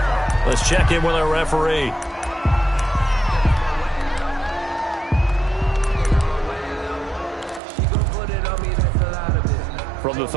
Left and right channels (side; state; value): left; drops out; at 7.6 s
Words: Let's check in with our referee. From the